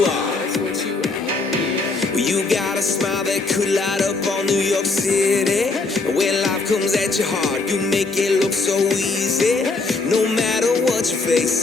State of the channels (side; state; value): right; quieter; 3.8 dB